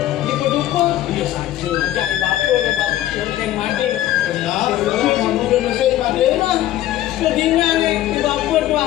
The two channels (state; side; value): quieter; right; 13.7 dB